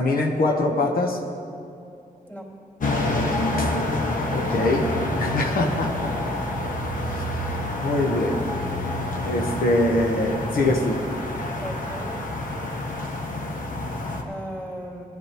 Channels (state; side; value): normal; both; correlation 0.56